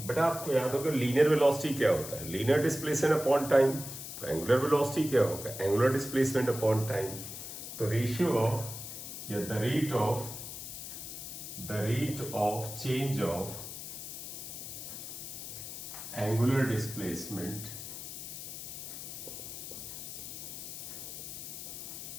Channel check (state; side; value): noise; left; hiss, 9 dB below the sound